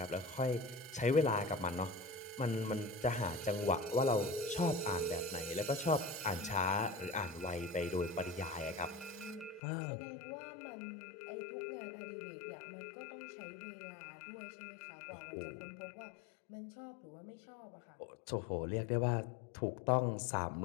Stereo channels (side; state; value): right; drops out; at 9.6 s